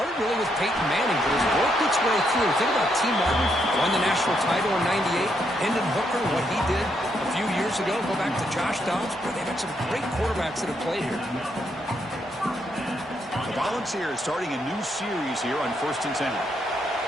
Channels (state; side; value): normal; both; correlation 0.77